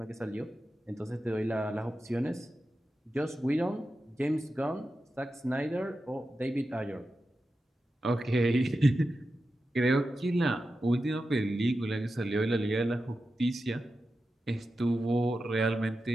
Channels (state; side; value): normal; both; correlation 0.91